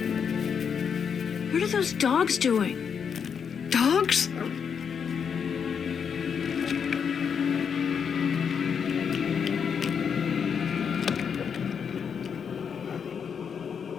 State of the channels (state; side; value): quieter; right; 6.9 dB